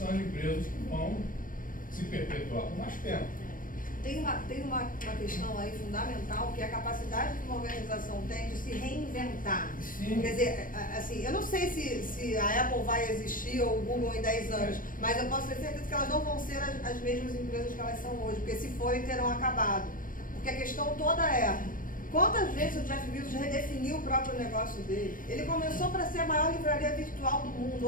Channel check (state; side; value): late; right; 0.40 ms